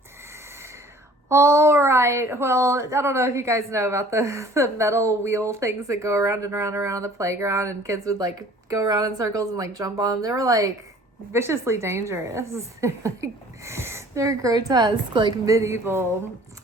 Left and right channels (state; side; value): normal; both; correlation 0.51